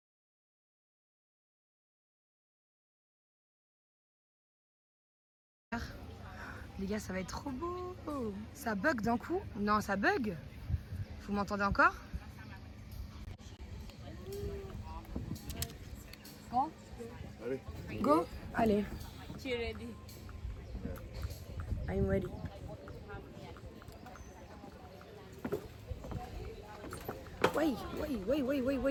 Les gars, ça va être trop beau. Ça bug d'un coup? Non, ça bug. Vous m'entendez encore? Allez. Go? Allez. Tu es ready? I'm ready. Oui.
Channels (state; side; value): identical; both; correlation 1.00